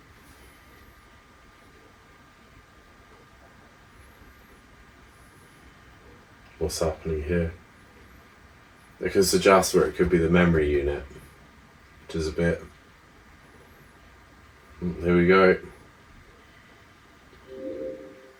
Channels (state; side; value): identical; both; correlation 1.00